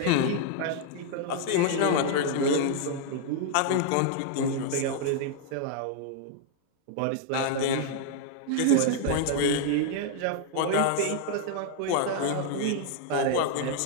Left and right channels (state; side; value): different; both; correlation 0.00